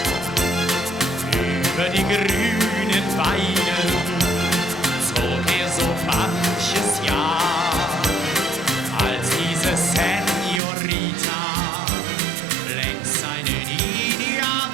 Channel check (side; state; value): left; drops out; at 10.6 s